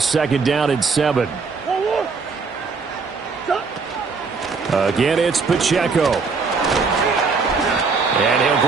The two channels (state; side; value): quieter; left; 4.8 dB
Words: 2nd down and 7. Again, it's Pacheco. And he'll